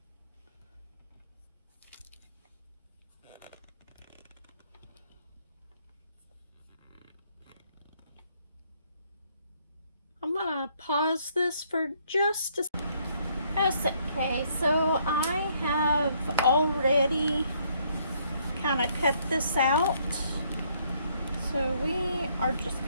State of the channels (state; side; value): inverted; both; correlation -0.68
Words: I'm gonna pause this for just a second. Okay, so I have already kind of cut this out. So we are just